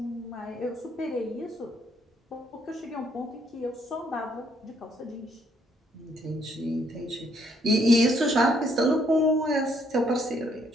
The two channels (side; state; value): both; normal; correlation 0.69